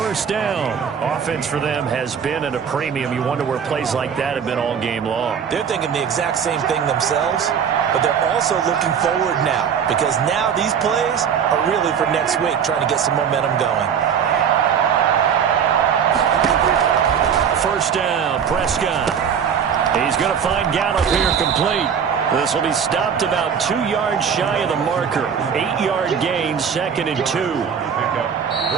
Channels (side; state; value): left; quieter; 7.4 dB